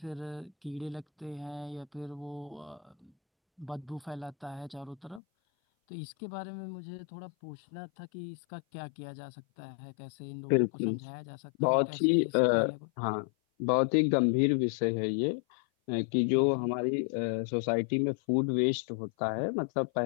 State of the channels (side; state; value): right; drops out; at 5.2 s